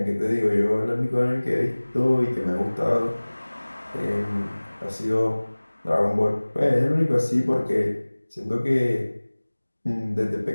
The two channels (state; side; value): inverted; both; correlation -1.00